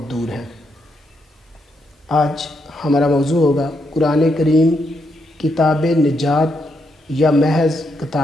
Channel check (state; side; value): normal; both; correlation 0.79